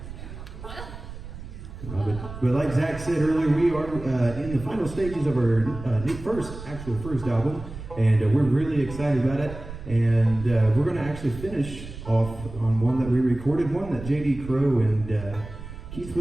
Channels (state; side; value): noise; right; rumble, 12 dB below the sound